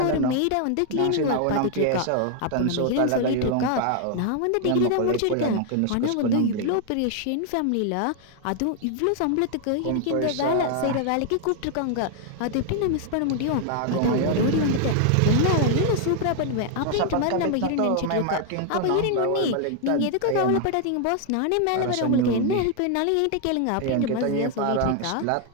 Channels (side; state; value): both; different; correlation 0.00